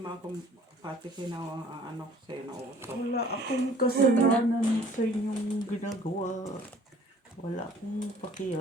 ako, pati ano ko sa'yo na uto. Wala akong kasalanan sa inyong ginagawa. Wala akong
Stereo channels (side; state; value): both; normal; correlation 0.53